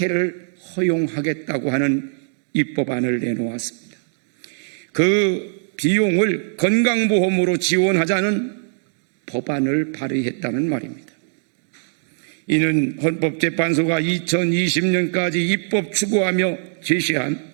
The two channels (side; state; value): left; silent; 60 dB below the other